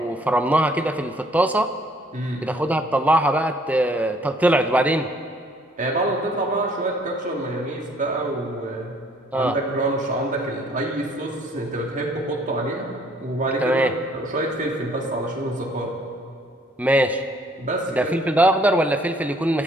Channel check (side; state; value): both; normal; correlation 0.61